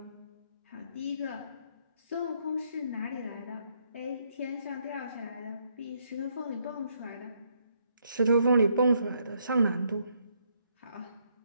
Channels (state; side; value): inverted; both; correlation -0.72